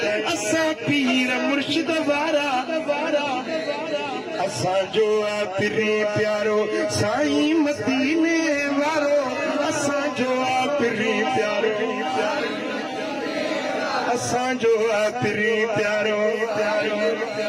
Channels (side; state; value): both; identical; correlation 1.00